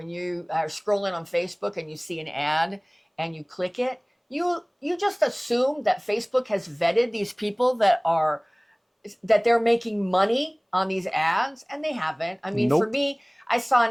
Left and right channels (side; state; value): both; identical; correlation 1.00